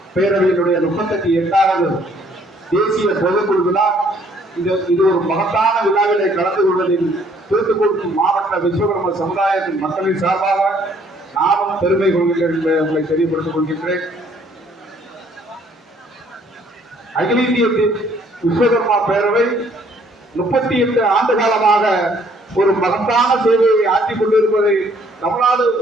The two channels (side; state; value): both; normal; correlation 0.62